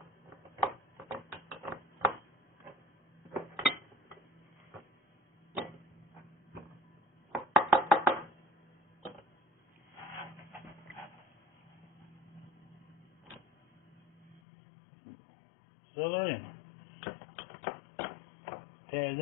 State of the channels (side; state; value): right; drops out; at 14.4 s